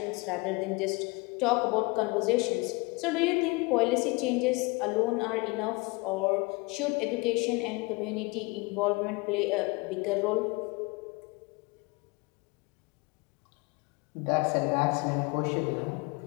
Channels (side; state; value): right; quieter; 26.6 dB